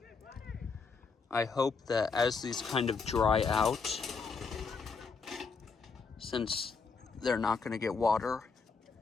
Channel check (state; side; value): quieter; right; 4.9 dB